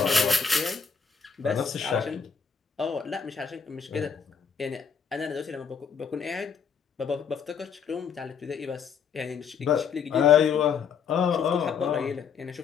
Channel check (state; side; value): quieter; right; 6.6 dB